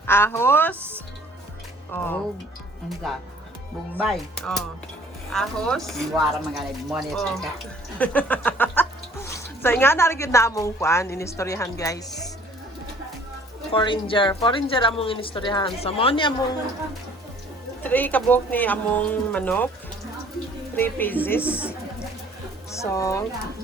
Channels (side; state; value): both; normal; correlation 0.55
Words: Ahos. Oh. Oh. Anda. Bombay. Oh. Ahos. Wara mga money Oh. ka. So, nga narigid na among kuan, inistoryahan, guys. Foreigner among inistoryahan. So, mo ni among 3 kabok ni among manok. 3 pieces. So,